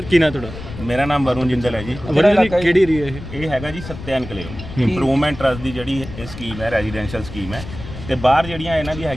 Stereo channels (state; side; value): noise; left; rumble, 12 dB below the sound